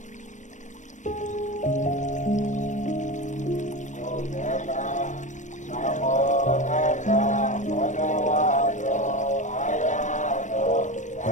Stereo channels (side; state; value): right; late; 0.35 ms